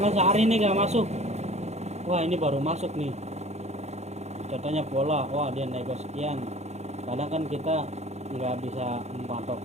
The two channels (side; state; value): left; late; 0.32 ms